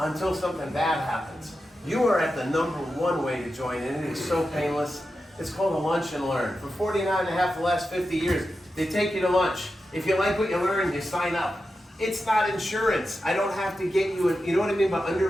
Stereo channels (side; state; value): both; normal; correlation 0.90